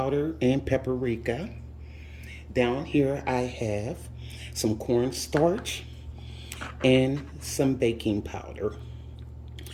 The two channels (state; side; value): identical; both; correlation 1.00